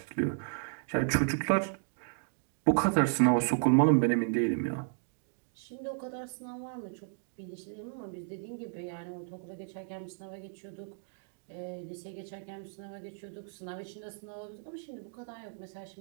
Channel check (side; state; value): left; silent; digital silence